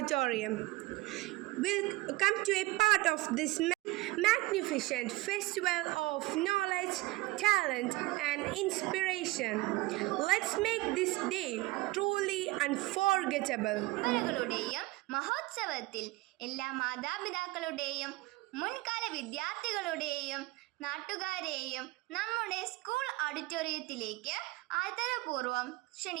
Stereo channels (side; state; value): left; quieter; 20.5 dB